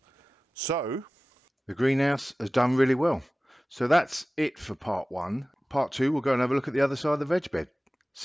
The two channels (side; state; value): both; normal; correlation 0.97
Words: So, the greenhouse has done really well. So that's it for part one. Part two, we'll go and have a look at the other side of the veg bed.